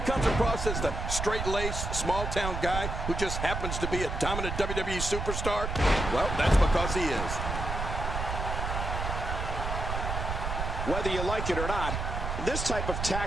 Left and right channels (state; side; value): noise; right; rumble, 3 dB below the sound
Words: across as the straight-laced, small-town guy who just happens to be a dominant WWE superstar, well, that's because he is. Whether you like it or not, this type of